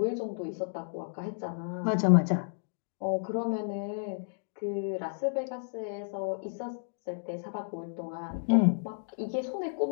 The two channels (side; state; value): right; silent; digital silence